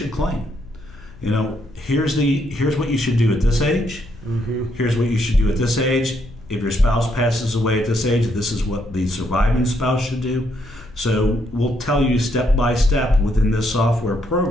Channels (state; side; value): noise; left; hum, 21 dB below the sound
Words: claim. Here's what you should do at this age. Here's what you should do at this age. If your spouse passes away at this age, this is what the surviving spouse should do. So we'll tell you step by step within this software